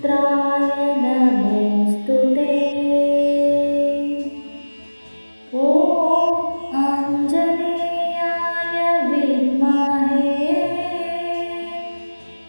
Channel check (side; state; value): both; inverted; correlation -1.00